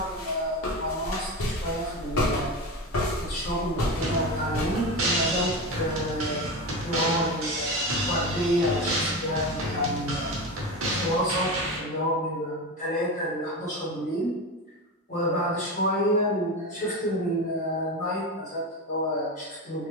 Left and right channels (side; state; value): both; normal; correlation 0.22